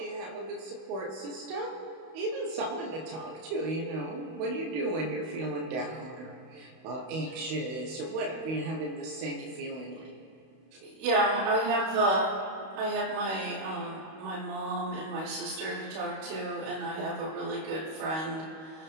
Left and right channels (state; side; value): late; left; 31 ms